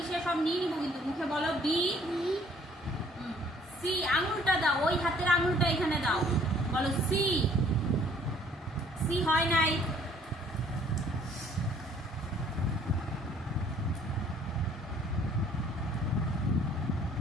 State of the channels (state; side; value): normal; both; correlation 0.59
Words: সব নিয়ে নিবো কিন্তু। মুখে বলো বি। সি, আঙুলটা দাও, ওই হাতের আঙুলটা এখানে দাও, বলো সি। সি হয় নাই।